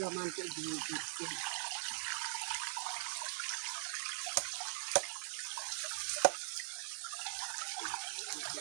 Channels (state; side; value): silent; left; 50 dB below the other